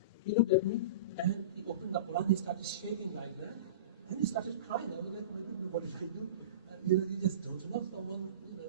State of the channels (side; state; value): both; inverted; correlation -0.32